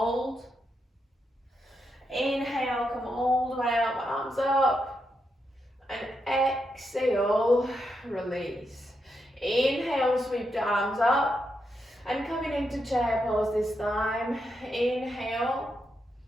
Inhale, come all the way up, arms up. And exhale, release. Inhale, sweep the arms up. And coming into chair pose this time. Inhale.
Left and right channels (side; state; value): both; normal; correlation 0.83